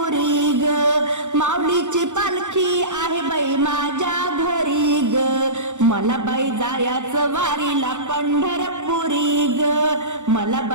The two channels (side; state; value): left; late; 0.85 ms